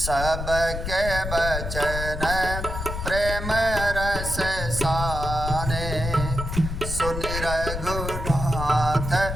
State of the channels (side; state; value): left; noise; rumble, 5 dB below the sound